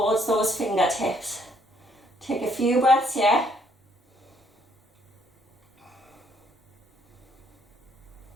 those fingertips. Take a few breaths here.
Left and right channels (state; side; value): normal; both; correlation 0.68